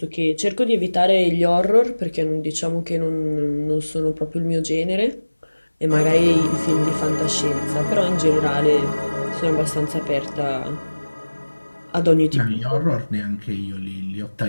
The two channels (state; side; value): inverted; both; correlation -1.00